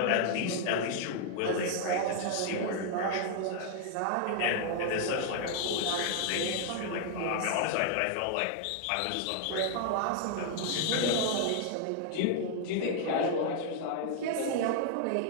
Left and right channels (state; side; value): different; both; correlation 0.00